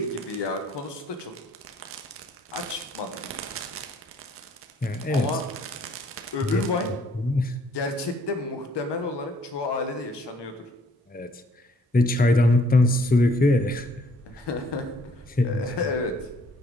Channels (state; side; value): normal; both; correlation 0.62